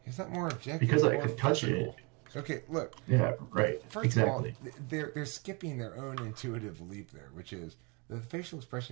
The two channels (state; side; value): quieter; left; 30.8 dB